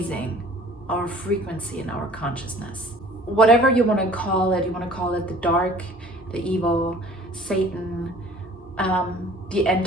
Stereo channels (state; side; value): normal; both; correlation 0.50